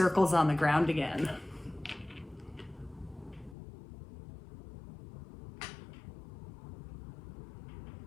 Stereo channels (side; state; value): right; drops out; at 3.6 s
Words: on the ground again.